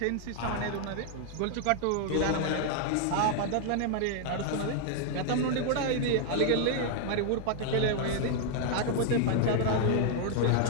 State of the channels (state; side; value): different; both; correlation 0.00